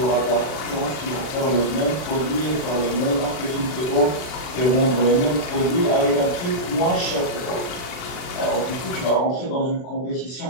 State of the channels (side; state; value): right; late; 40 ms